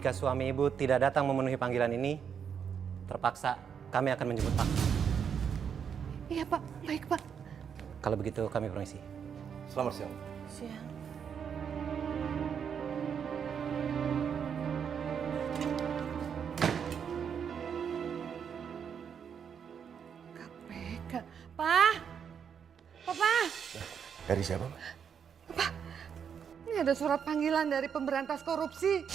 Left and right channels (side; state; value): left; quieter; 7.4 dB